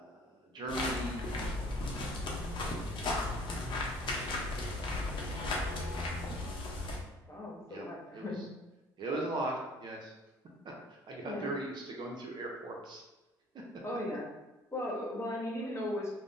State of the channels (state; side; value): normal; both; correlation 0.52